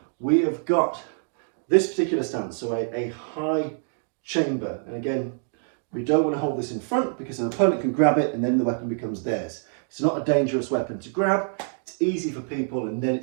We have got this particular stance, so a high chamber, and again, we don't want to hold this in front because an opponent can grab it and then the weapon becomes theirs. It's not a dangerous weapon to grab, it's easy for people, and then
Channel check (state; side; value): silent; left; digital silence